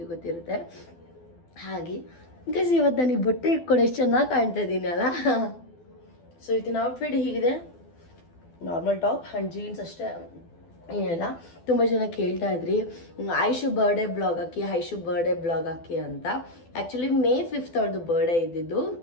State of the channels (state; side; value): late; right; 12 ms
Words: ಗೊತ್ತಿರುತ್ತೆ. ಹಾಗೆ ಗೈಸ್, ಇವತ್ತು ನನಗೆ ಬಟ್ಟೆ ಇಟ್ಕೊಂಡು ಎಷ್ಟು ಚೆನ್ನಾಗಿ ಕಾಣ್ತಾ ಇದ್ದೀನಿ ಅಲ್ಲ. ಸೊ ಇವತ್ತಿನ ಔಟ್ಫಿಟ್ ಹೀಗಿದೆ, ನಾರ್ಮಲ್ ಟಾಪ್ ಆ್ಯಂಡ್ ಜೀನ್ಸ್ ಅಷ್ಟೇ, ಏನಿಲ್ಲ. ತುಂಬ ಜನ ಕೇಳ್ತಾ ಇದ್ರಿ ಐಶು ಬರ್ಡೇ ಬ್ಲಾಗ್ ಹಾಕಿ ಅಂತ. ಆ್ಯಕ್ಚುಲಿ May 5th ಅವಳದು ಬರ್ಡೇ ಇದ್ದಿದ್ದು.